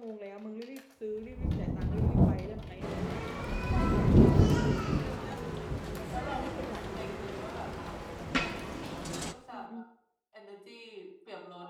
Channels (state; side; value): identical; both; correlation 1.00